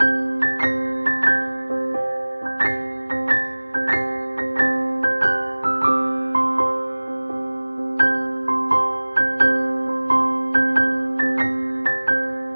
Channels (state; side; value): inverted; both; correlation -1.00